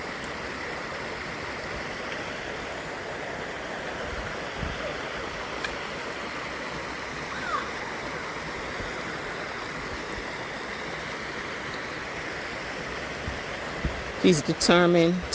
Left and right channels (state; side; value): identical; both; correlation 1.00